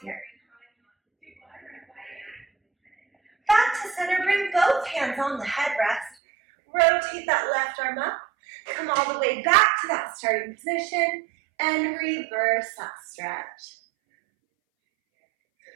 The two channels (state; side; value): drops out; left; at 6.2 s